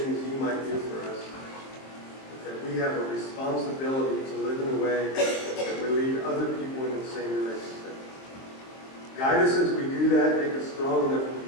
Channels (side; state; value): right; late; 23 ms